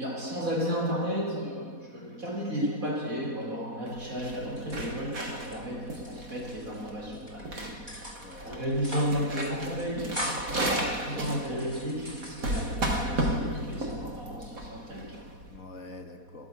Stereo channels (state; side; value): late; left; 4.1 ms